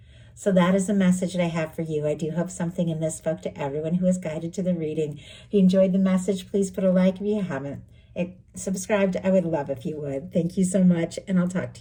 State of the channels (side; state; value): both; identical; correlation 1.00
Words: So that is the message that I have for you. I do hope something in this spoke to everyone who is guided to the reading. If you enjoyed the message, please put a like if you haven't. Subscribed, I would love if you would. Thank you so much, and I'll talk